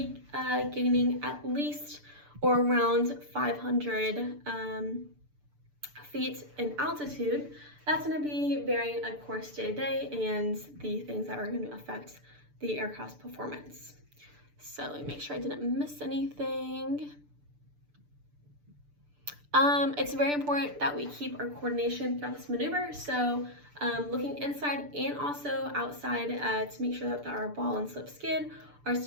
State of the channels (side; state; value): left; late; 6.8 ms